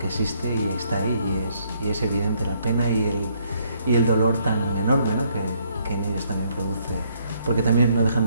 existe y está ahí y es evidente la pena y el dolor tan enorme, ¿no? que en ellos también produce, porque también no dejan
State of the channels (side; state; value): both; inverted; correlation -0.70